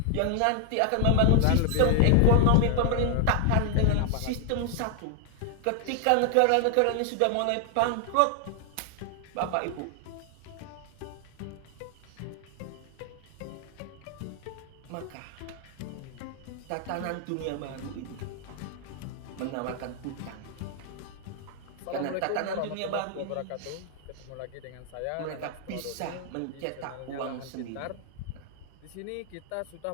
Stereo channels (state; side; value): different; both; correlation 0.00